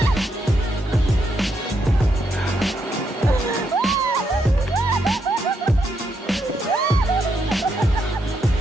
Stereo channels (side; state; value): both; normal; correlation 0.79